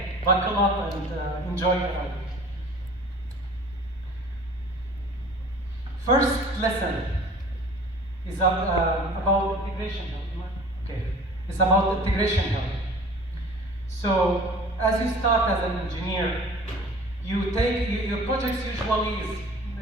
buckle up and enjoy the ride. First lesson is about integration help. Okay, it's about integration help. So as you start as an engineer, your projects usually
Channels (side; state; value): both; normal; correlation 0.45